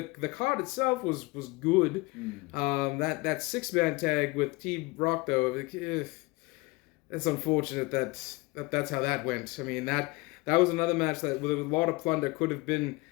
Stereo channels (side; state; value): right; quieter; 24.0 dB